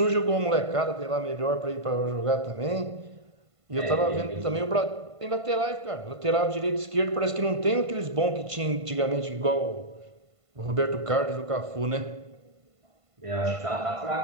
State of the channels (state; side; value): late; left; 1.5 ms